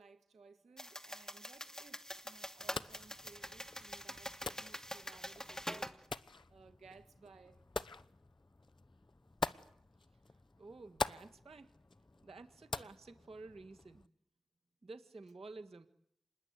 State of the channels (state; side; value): normal; both; correlation 0.77